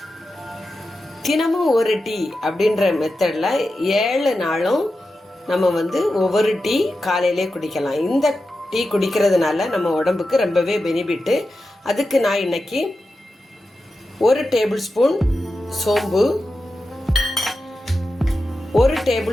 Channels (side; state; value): both; normal; correlation 0.91